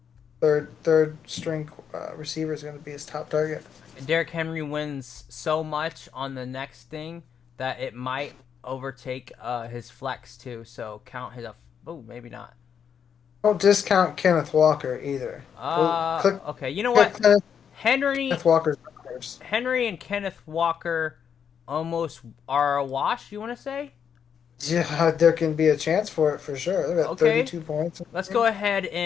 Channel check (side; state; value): right; quieter; 7.7 dB